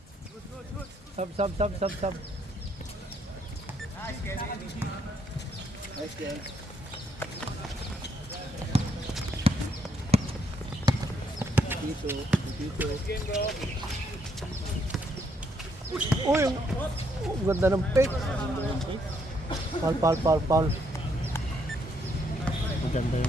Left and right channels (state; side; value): normal; both; correlation 0.73